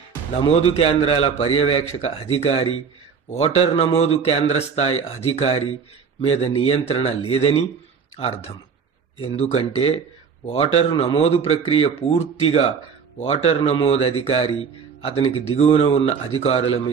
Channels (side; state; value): left; quieter; 6.1 dB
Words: నమోదు కేంద్రాల పర్యవేక్షక అధికారి, ఓటర్ నమోదు కేంద్ర స్థాయి అధికారి మీద నియంత్రణ లేదని అర్థం. ఎందుకంటే ఓటరు నమోదు ప్రక్రియ పూర్తిగా ఓటర్ నమోదు అధికారి, అతనికి దిగువన ఉన్న అధికారుల